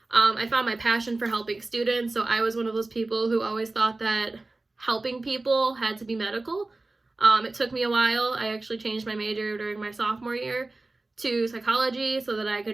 I found my passion for helping students. So I was one of those people who always thought that helping people had to be medical. It took me a while. I actually changed my major during my sophomore year to psychology so that I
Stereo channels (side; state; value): left; quieter; 3.2 dB